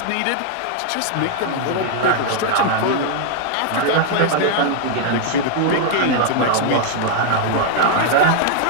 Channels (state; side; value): different; both; correlation 0.00